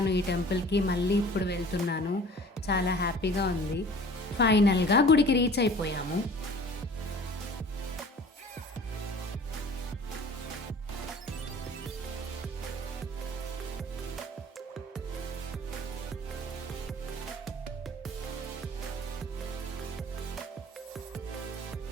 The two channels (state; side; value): normal; both; correlation 0.47